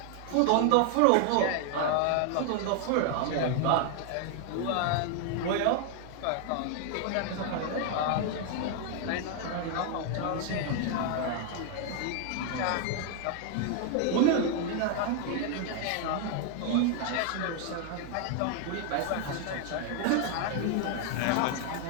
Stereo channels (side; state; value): both; different; correlation 0.00